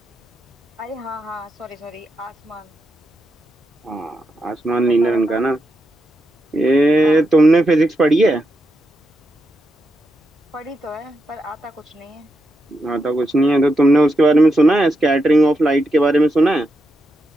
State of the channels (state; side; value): normal; both; correlation 0.85